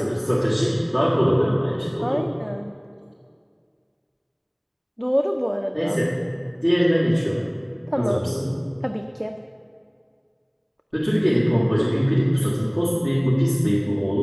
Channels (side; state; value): both; identical; correlation 1.00